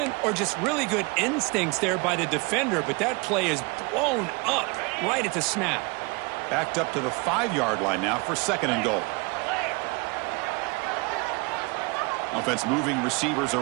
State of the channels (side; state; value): left; quieter; 28.2 dB